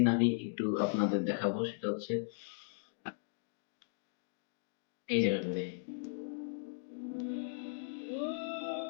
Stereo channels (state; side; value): silent; right; digital silence